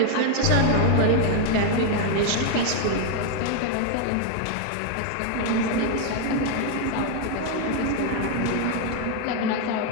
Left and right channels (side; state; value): both; different; correlation 0.00